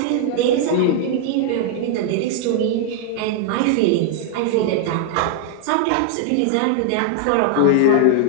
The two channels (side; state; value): both; different; correlation -0.01